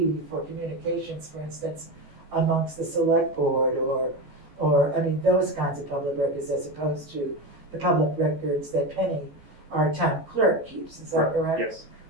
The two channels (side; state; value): left; late; 14 ms